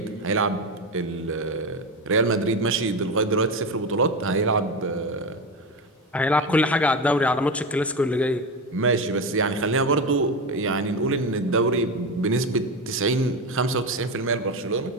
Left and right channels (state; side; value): normal; both; correlation 0.18